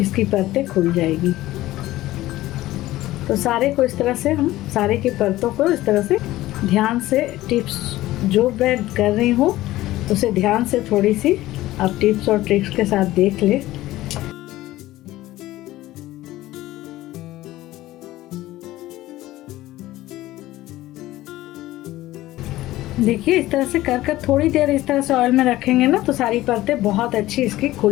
इसकी परतें खुल जाएगी। तो सारे को इस तरह से हम सारे की परतों को इस तरह से ध्यान से, टिप्स जो मैं कर रही हूँ उसे ध्यान से थोड़ी सी आप टिप्स और ट्रिक्स के साथ देख ले। देखिए इस तरह से कर कर थोड़ी देर इस तरह से ऑयल में रखेंगे ना, तो सारी परतें बहुत अच्छी इसकी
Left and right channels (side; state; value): right; quieter; 16.3 dB